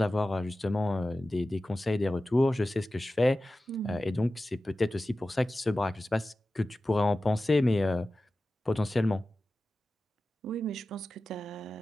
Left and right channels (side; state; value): both; normal; correlation 0.95